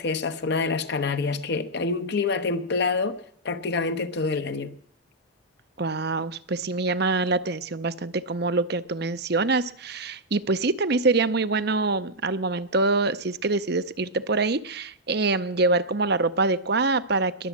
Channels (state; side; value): normal; both; correlation -0.06